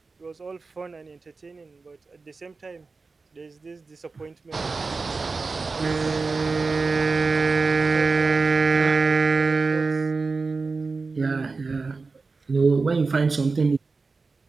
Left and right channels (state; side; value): quieter; left; 4.1 dB